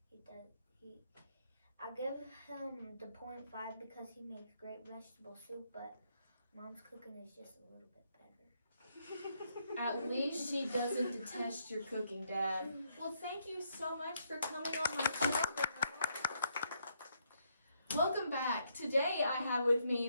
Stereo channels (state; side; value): inverted; both; correlation -0.75